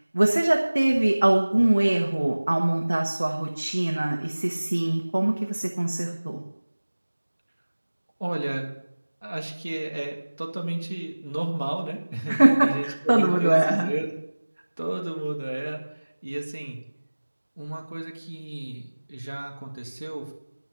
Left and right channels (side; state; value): both; inverted; correlation -1.00